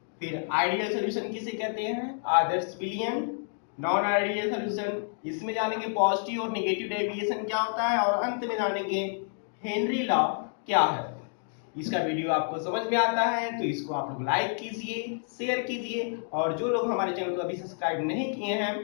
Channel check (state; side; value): silent; right; 59 dB below the other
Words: फिर आइडियल सॉल्यूशन किसे कहते हैं, आदर्श विलयन, नॉन आइडियल सॉल्यूशन, इसमें जानेंगे पॉजिटिव और नेगेटिव डेविएशन क्या होता है, और अंत में जानेंगे हेनरी लॉ क्या है। इसका वीडियो आपको समझ में आता है तो इसको आप लोग लाइक कीजिए, शेयर कीजिए, और जो लोग हमारे चैनल को अभी सब्सक्राइब नहीं किए हैं